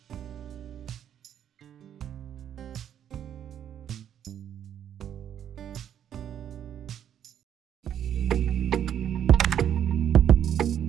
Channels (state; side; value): quieter; left; 9.8 dB